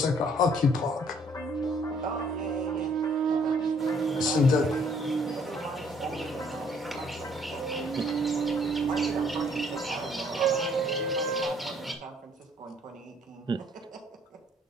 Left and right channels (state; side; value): normal; both; correlation 0.62